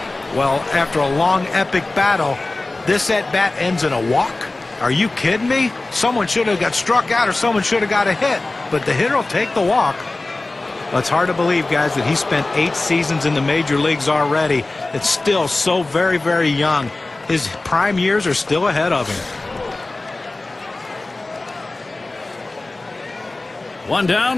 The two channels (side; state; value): right; quieter; 3.1 dB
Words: Well, after a long, epic battle, this at-bat ends in a walk? Are you kidding me? Someone should have got struck out or someone should have got a hit, but the hitter will take the walk. Well, it's hard to believe, guys, that he spent 8 seasons in the major leagues already. It's still so very, very young. His prime years are still ahead of him. 1 down,